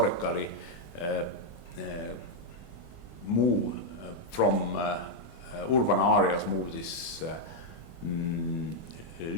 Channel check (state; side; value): late; right; 24 ms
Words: move from urban areas, move these